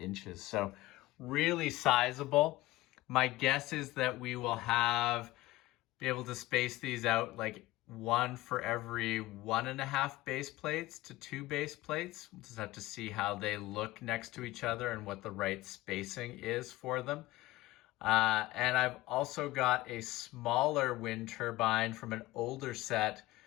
So really sizable. My guess is that we will be able to space these out like one for every 1.5 base plates to 2 base plates. We'll just have to see how they look next to each other and what the right spacing is for them. And I've also got a smaller wind turbine from an older set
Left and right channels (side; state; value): right; quieter; 18.1 dB